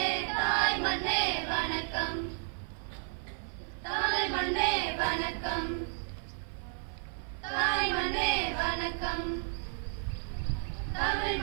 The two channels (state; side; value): silent; left; 56 dB below the other